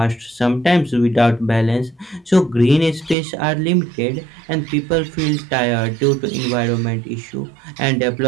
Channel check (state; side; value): drops out; left; at 3.2 s